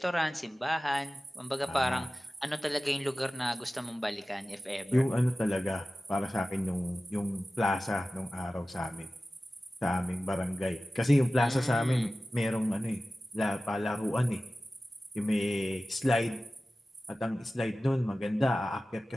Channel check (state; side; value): normal; both; correlation 0.96